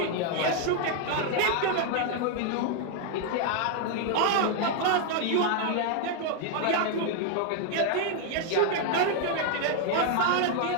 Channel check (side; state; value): both; different; correlation 0.00